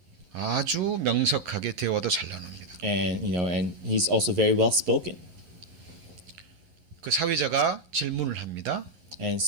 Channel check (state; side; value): late; left; 11 ms